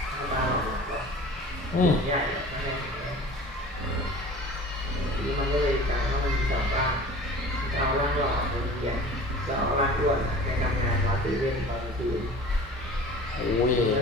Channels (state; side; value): normal; both; correlation 0.42